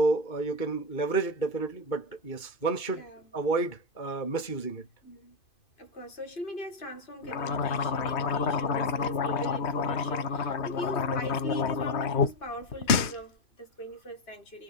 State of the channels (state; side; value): late; right; 2.5 ms